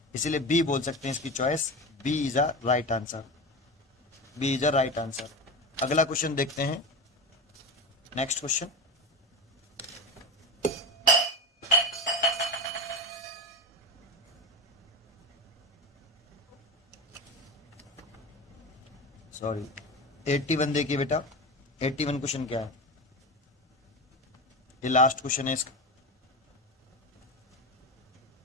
इसीलिए बी बोल सकते हैं इसकी choice, B is a right answer, B is a right answer. अगला क्वेश्चन देखते हैं, नेक्स्ट क्वेश्चन। सॉरी 81 देखिए बेटा, 81 क्वेश्चन क्या है, ये लास्ट क्वेश्चन है इसका।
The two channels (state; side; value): normal; both; correlation 0.23